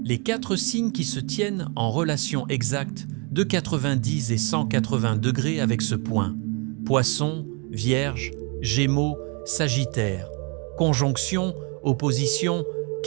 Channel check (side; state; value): left; quieter; 33.3 dB